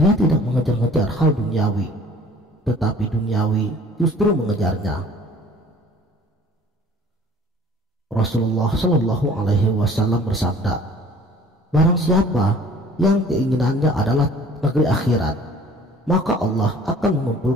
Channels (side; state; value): both; normal; correlation 0.51